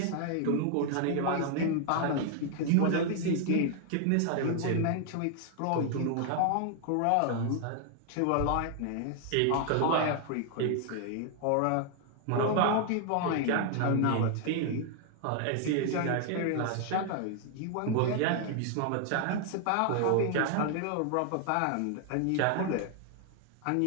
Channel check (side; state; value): both; different; correlation 0.00